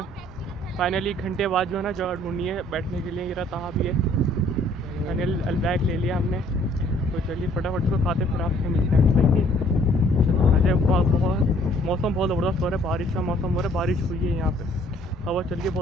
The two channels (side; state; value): both; normal; correlation 0.60